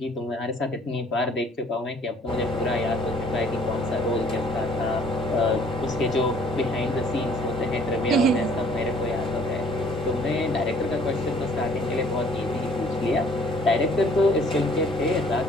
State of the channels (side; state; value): both; normal; correlation 0.58